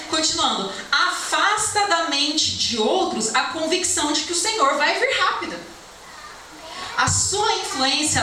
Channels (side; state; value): both; identical; correlation 1.00